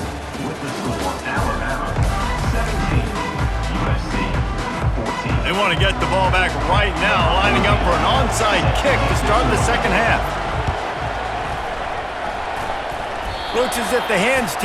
With the score, Alabama 17, USC 14. They want to get the ball back right now, lining up for an onside kick to start the second half. Looks as if the hands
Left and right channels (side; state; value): both; identical; correlation 1.00